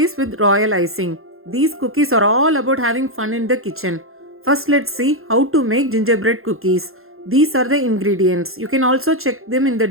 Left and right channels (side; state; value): left; late; 0.61 ms